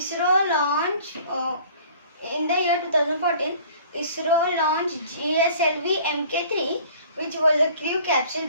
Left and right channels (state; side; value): inverted; both; correlation -0.50